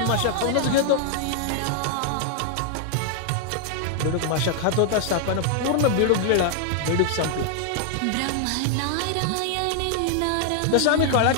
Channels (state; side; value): different; both; correlation 0.00